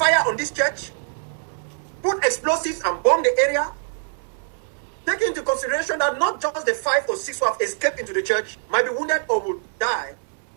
on this church? Put explosives and bomb the area? Take into consideration that not just the 5 or 6 who have escaped into the church might be wounded or will die,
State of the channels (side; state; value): left; silent; 63 dB below the other